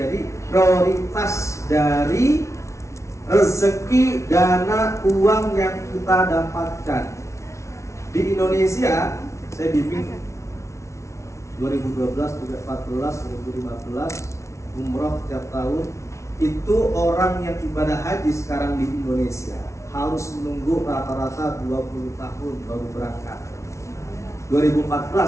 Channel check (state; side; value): late; right; 0.14 ms